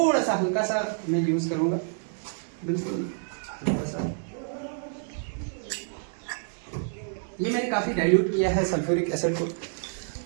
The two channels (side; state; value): left; silent; digital silence